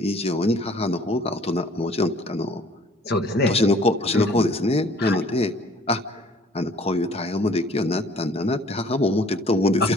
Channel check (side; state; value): both; normal; correlation 0.55